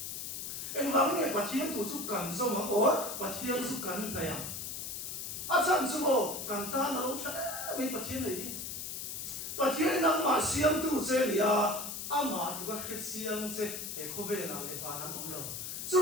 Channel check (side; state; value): left; noise; hiss, 6 dB below the sound